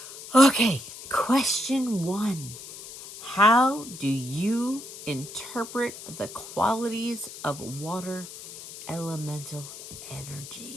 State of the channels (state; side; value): noise; left; hiss, 13 dB below the sound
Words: Okay, question one. How do you interpret the qualities of water elemental